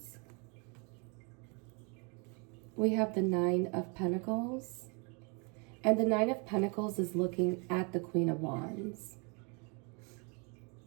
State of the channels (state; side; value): quieter; left; 33.5 dB